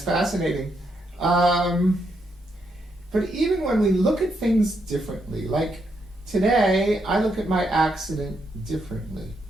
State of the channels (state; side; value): normal; both; correlation 0.78